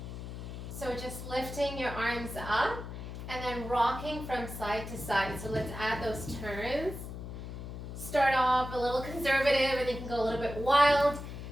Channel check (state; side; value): noise; left; hum, 9 dB below the sound